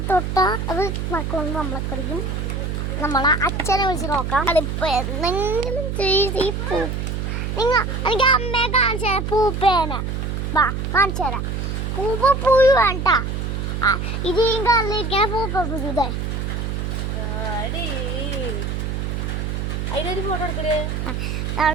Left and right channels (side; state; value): right; noise; hum, 2 dB below the sound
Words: തൊട്ടാ അത് മക്കളൊന്ന് നമ്മളെ കടിക്കും. നമ്മളെ അച്ഛനെ വിളിച്ച് നോക്കാം. അതിപ്പോ എന്തെങ്കിലും ഈ പൂ എനിക്ക് അമ്മയെ കാണിച്ചു തരാം. പൂപ്പേനെ വാ കാണിച്ചു തരാം. പൂപ്പപ്പുഴു വേണ്ട, ഇത് ഈ കല്ലിരിക്കണ പൂപ്പപ്പുഴു. ഇതേ ഫോട്ടോ എടുക്കേ.